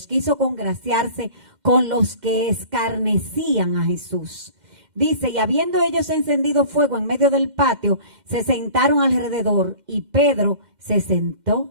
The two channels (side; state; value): left; late; 2.1 ms